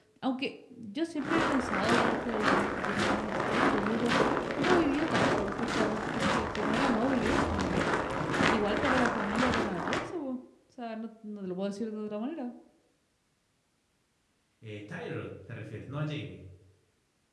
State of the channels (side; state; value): both; identical; correlation 1.00